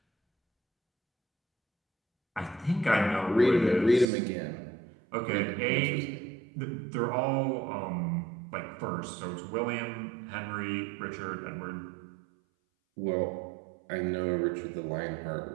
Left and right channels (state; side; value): drops out; left; at 4.0 s